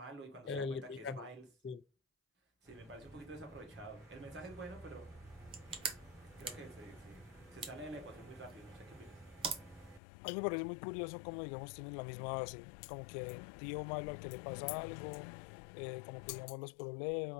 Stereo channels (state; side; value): drops out; right; at 10.0 s